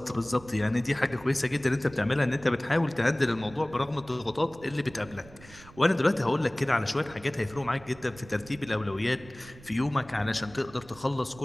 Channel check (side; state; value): right; noise; rumble, 21 dB below the sound